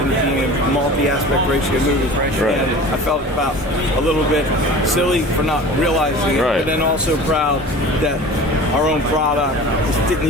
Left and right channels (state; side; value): normal; both; correlation 0.39